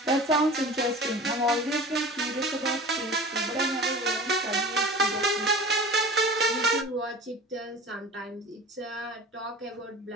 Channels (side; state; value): both; normal; correlation 0.38